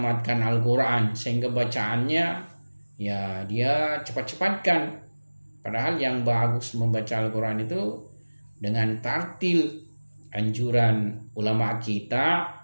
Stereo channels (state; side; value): inverted; both; correlation -1.00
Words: Al-Quran, sehingga bacaannya, ya, dia cepat-cepatkan. Padahal yang bagus membaca Al-Quran itu dengan tartil. Anjuran ulama kita,